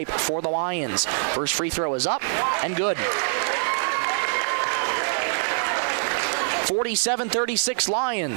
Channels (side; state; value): left; silent; 62 dB below the other